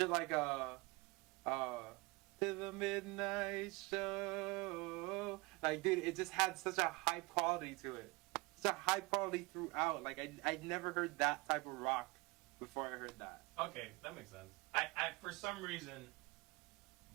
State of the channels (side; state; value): left; quieter; 25.9 dB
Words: like to the midnight show. Like, dude, it just had such a high quality to it. Such a high quality throughout. Like, I'd never heard that type of rock before I heard that. Okay, that makes sense. I for some reason,